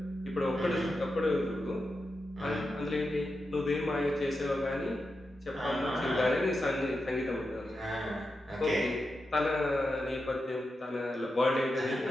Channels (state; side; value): normal; both; correlation 0.89